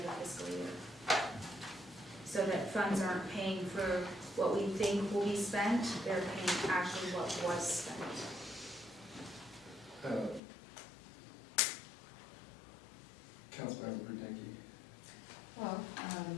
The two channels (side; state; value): right; drops out; at 10.4 s